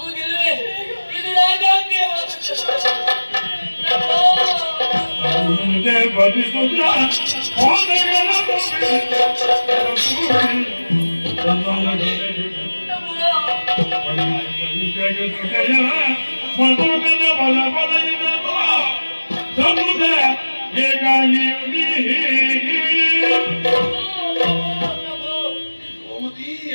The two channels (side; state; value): both; inverted; correlation -1.00